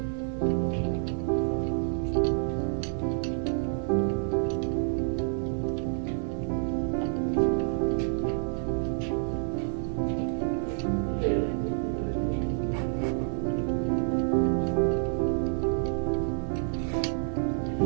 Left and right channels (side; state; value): left; silent; digital silence